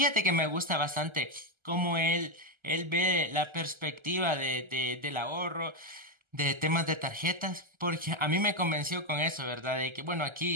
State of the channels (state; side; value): late; left; 1.3 ms